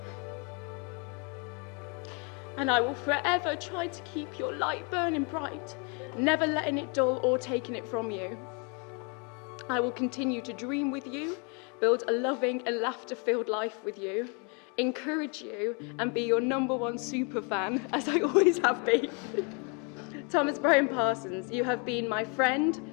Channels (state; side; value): quieter; right; 35.1 dB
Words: And I will forever try to keep your light burning bright, never letting it dull or taking it from you. I will continue to dream with you, build a loving and laughter-filled life with you, encourage you, and be your #1 super fan, as I always have been. Thomas Brian Parsons, you have been my friend,